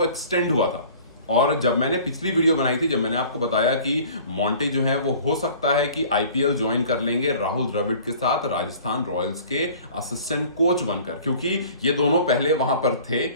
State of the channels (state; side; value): inverted; both; correlation -0.47